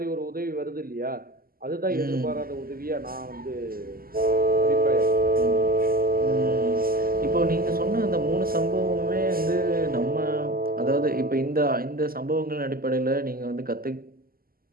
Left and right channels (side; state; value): left; late; 0.42 ms